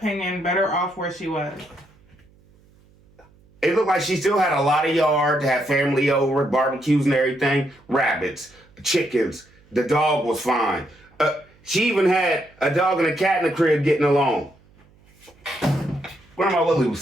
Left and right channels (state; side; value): noise; right; hum, 30 dB below the sound